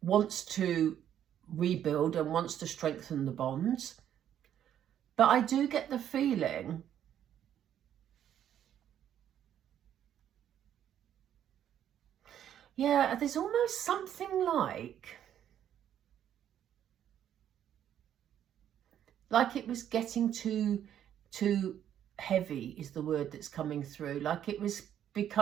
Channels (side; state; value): left; quieter; 10.2 dB